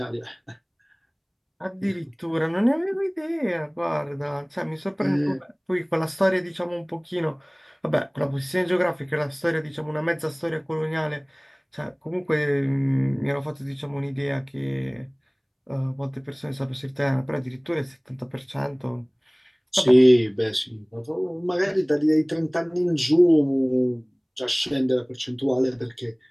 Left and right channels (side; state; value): both; identical; correlation 1.00